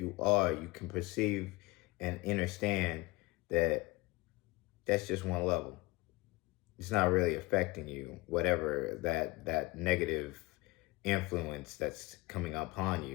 are, you can perceive and understand that that's just one level. It's not really affecting you, whatever that negative influence that's coming upon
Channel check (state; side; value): quieter; right; 22.9 dB